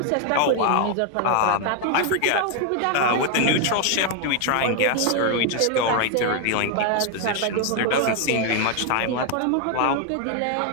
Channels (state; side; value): different; both; correlation 0.00